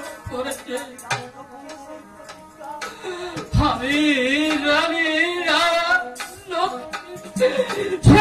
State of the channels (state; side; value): identical; both; correlation 1.00